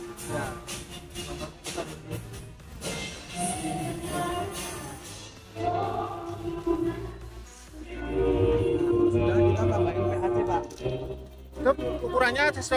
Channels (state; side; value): identical; both; correlation 1.00